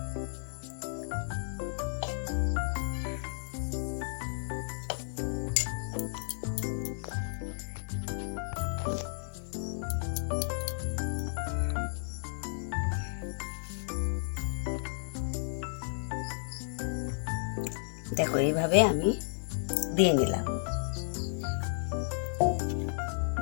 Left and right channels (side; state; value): right; silent; 56 dB below the other